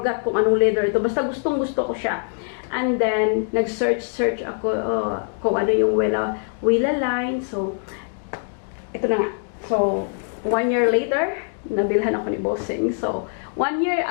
kung anong leather ito, basta gustong-gusto ko siya. And then, nag-search ako kung ano yung Wella line, so, ito na nga. So, 1 year later, nabilhan ako ni Bossing. So, 1 year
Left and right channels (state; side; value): silent; right; 64 dB below the other